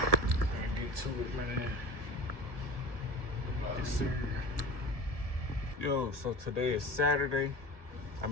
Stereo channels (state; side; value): late; left; 1.7 ms